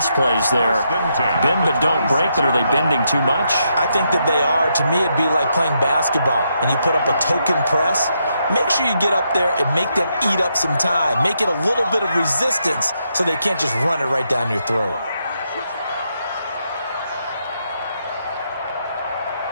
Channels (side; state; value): both; inverted; correlation -0.79